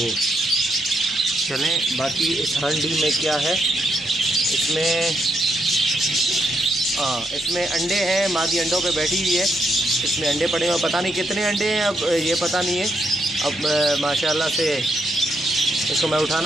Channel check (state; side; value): normal; both; correlation 0.79